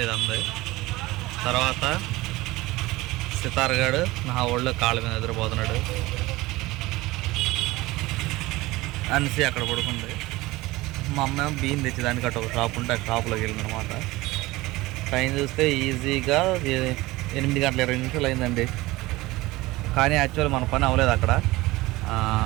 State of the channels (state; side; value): quieter; left; 19.9 dB